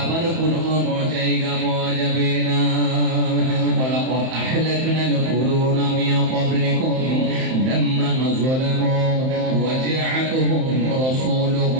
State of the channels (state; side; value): late; left; 31 ms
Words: কোনো জায়গা পাওয়া যাবে না। ওয়ালাকাদ আহলাকনাল কুরুনা মিন ক্বাবলিকুম লাম্মা যালামু ওয়া জাআতুহুম